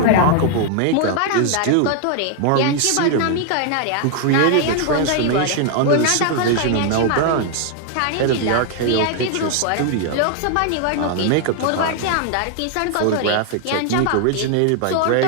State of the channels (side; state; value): both; different; correlation 0.00